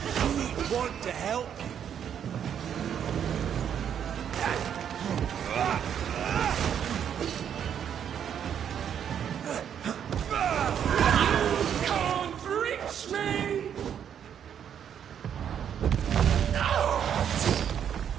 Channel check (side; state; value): left; quieter; 8.8 dB